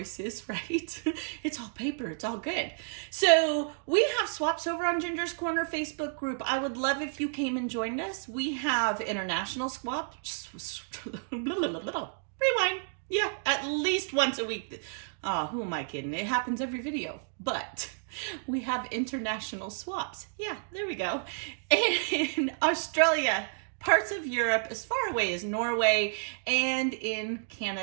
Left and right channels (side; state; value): left; silent; digital silence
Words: is, right? It's all paper. It's all good. So we have swaps over on Ginger's Corner Facebook group. I would love if you came and joined us. We have international swaps. Rewind. Yeah, at least once a week. Oh, who am I kidding? It happens every video, but we have international swaps. Yeah, there we go. In Australia, parts of Europe, as far away as Norway, and in